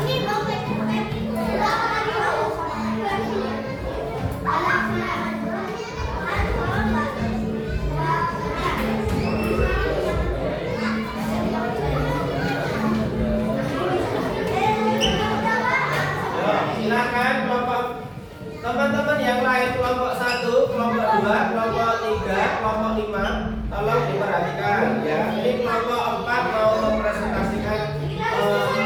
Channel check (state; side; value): identical; both; correlation 1.00